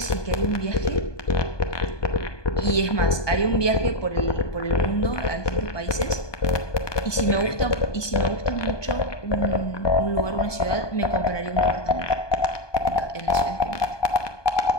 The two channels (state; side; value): late; right; 1.2 ms